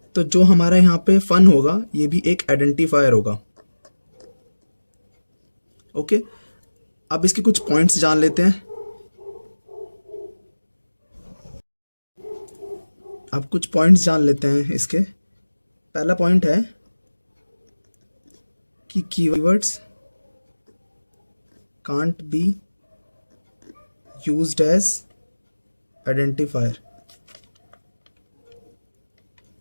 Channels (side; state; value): both; inverted; correlation -1.00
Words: तो जो हमारा यहाँ पे फन होगा ये भी एक आइडेंटिफायर होगा, ओके। अब इसके कुछ पॉइंट्स जान लेते हैं। अब कुछ पॉइंट्स जान लेते हैं इसके। पहला पॉइंट है कि keywords can't be used as identifier.